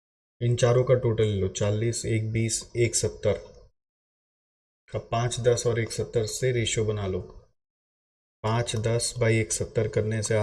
इन चारों का टोटल ले लो, 40, 1, 20, 1, 70 का 5, 10 और 1, 70 से रेशियो बना लो। 5, 10 बाई 1, 70 करने से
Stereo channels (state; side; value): identical; both; correlation 1.00